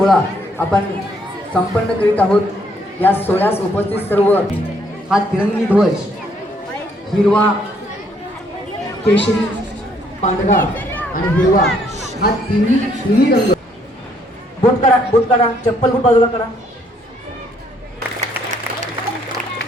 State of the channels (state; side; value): normal; both; correlation 0.68